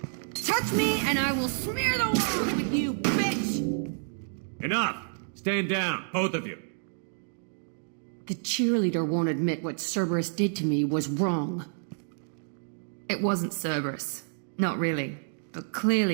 Touch me and I will smear the walls with you, bitch! Enough! Stand down, both of you. The cheerleader won't admit what Cerberus did to me was wrong. It wasn't Cerberus. Not really. But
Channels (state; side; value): silent; left; digital silence